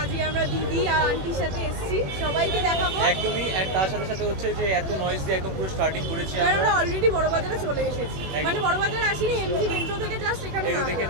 আজকে আমরা দিদি আর আন্টির সাথে এসেছি, সবাইকে দেখাবো। একদমই, এন্ড তার সাথে সাথে হচ্ছে যে এত নয়েজ দিয়ে একদম পুরো স্টার্টিং করেছি আমরা অলরেডি বড় বাজারে চলে এসেছি। মানে বড় বাজারে আসিনি, এমজি মেট্রো থেকে জাস্ট এখানে দেখে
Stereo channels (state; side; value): late; left; 21 ms